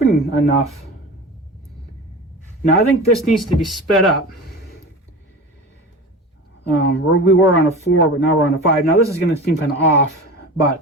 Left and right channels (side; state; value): both; normal; correlation 0.31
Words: enough. Now, I think this needs to be sped up. We were on a 4, but now we're on a 5. Now, this is going to seem kind of off,